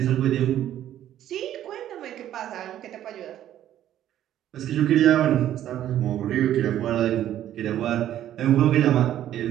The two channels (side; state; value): left; quieter; 11.8 dB